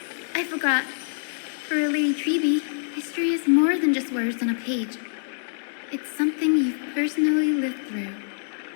I forgot. For a Lady Treby, history is more than just words on a page. It's something you've personally lived through.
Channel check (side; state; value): right; silent; 60 dB below the other